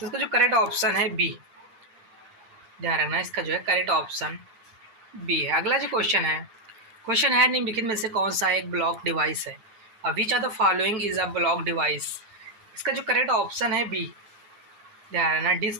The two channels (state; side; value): late; left; 9.8 ms